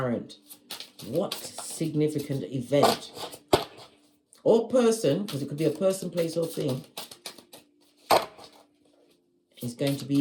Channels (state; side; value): identical; both; correlation 1.00